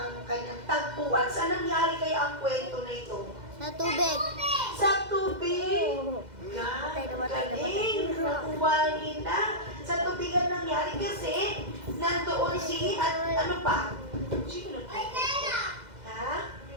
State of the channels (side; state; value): left; late; 2.0 ms